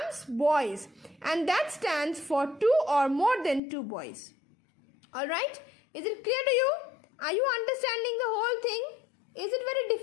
boys. And that stands for two or more than two boys. Alright? Is it clear to you? Are you understanding the whole thing? Is it very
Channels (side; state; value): right; drops out; at 3.6 s